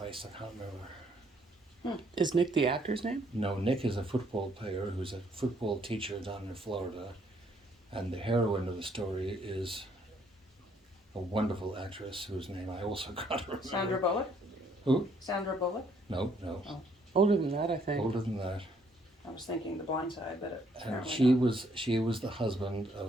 I can't remember. Is Nick the actor's name? No, Nick is a football player who's a football teacher down in Florida, and the heroine of the story is a wonderful actress whose name I also can't remember. Sandra Bullock? Who? Sandra Bullock? No. Older than that, I think. Older than that. I was thinking The Blind Side, but And apparently she was the husband of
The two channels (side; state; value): both; normal; correlation 0.67